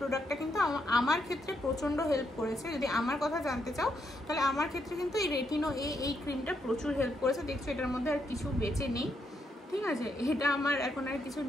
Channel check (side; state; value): both; normal; correlation 0.78